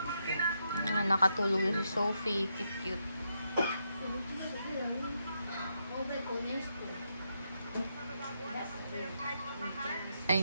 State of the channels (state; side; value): inverted; both; correlation -0.81